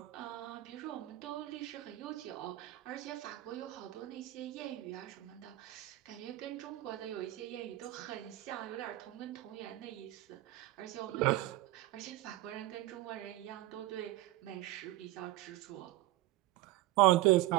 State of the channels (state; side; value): quieter; left; 17.0 dB